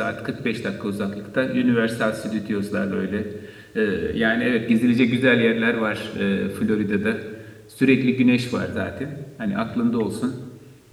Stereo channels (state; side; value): identical; both; correlation 1.00